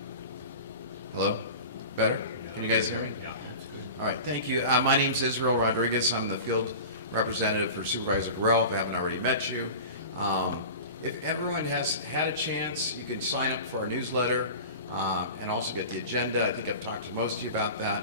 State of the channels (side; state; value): both; inverted; correlation -0.34